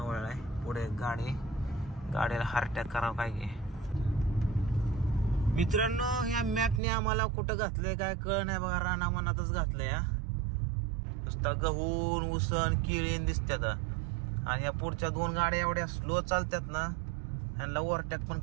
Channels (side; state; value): left; drops out; at 6.8 s